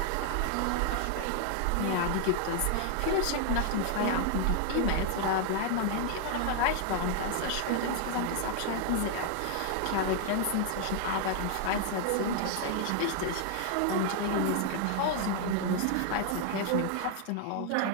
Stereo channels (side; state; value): both; different; correlation 0.00